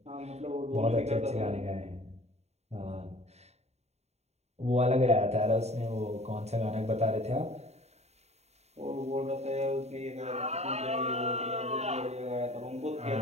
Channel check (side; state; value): left; late; 0.31 ms